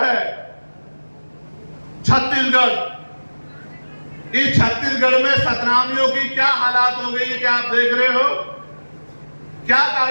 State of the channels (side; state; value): both; inverted; correlation -1.00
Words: छत्तीसगढ़। इस छत्तीसगढ़ में सतनामियों की क्या हालात हो गई है, क्या आप देख रहे हो? क्या